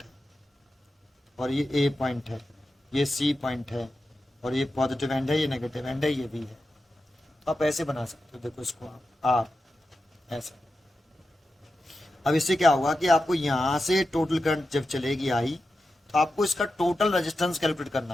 है, और ये A पॉइंट है, ये C पॉइंट है, और ये पॉजिटिव एंड है, ये नेगेटिव एंड है, ये B है। तो आप ऐसे बना सकते हो। देखो इसको आप R ऐसे। अब इससे क्या होगा कि आपको यहाँ से टोटल करंट जब चलेगी आई, तो आपको इसका टोटल रेजिस्टेंस कैलकुलेट करना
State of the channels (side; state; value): both; normal; correlation 0.91